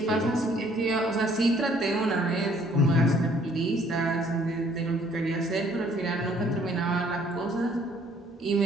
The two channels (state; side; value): normal; both; correlation 0.61